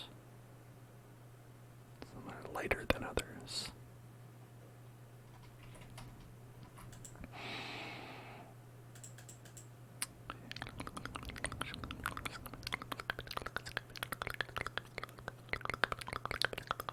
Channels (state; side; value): identical; both; correlation 1.00